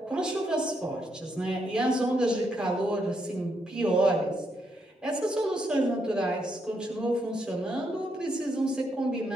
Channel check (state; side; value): normal; both; correlation 0.78